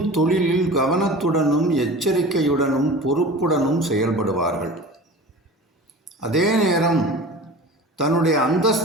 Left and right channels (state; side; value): normal; both; correlation 0.37